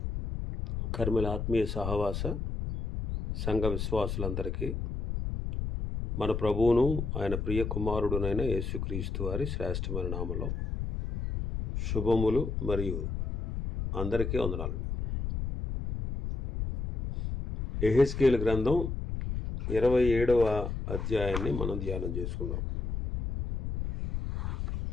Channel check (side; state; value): left; noise; rumble, 3 dB below the sound